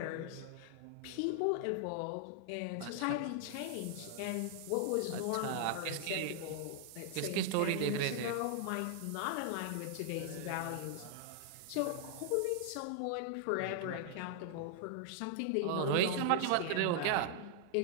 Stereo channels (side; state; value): both; different; correlation 0.00